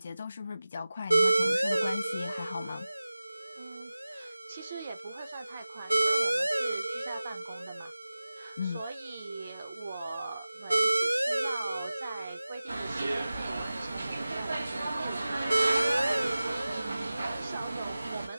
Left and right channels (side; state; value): both; inverted; correlation -0.96